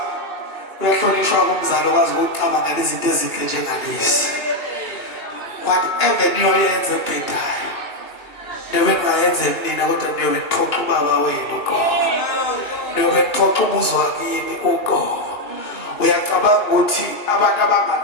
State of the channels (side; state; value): right; late; 2.8 ms